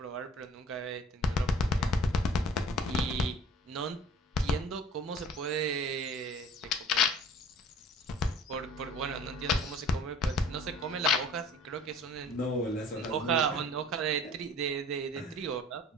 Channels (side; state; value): both; normal; correlation 0.47